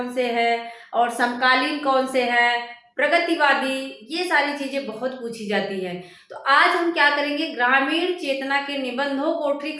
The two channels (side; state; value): both; identical; correlation 1.00